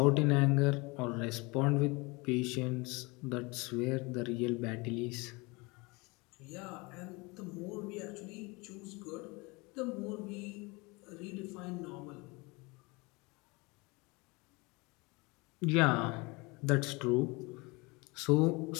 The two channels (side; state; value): right; quieter; 26.2 dB